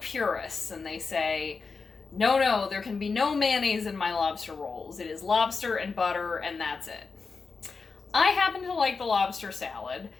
and they say, no, there can be no mayonnaise in my lobster rolls. It is lobster and butter and that's it. I happen to like the lobster salad.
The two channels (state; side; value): quieter; right; 4.7 dB